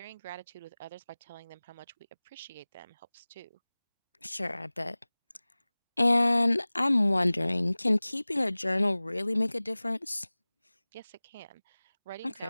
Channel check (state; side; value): inverted; both; correlation -0.99